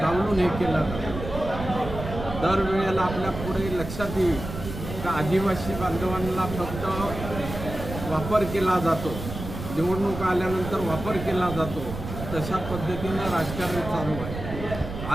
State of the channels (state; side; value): noise; right; rumble, 8 dB below the sound